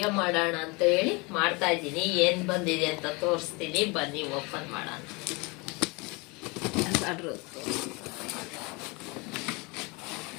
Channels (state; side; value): quieter; right; 27.4 dB